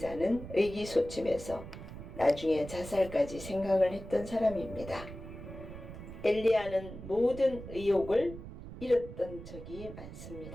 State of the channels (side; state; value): right; noise; rumble, 12 dB below the sound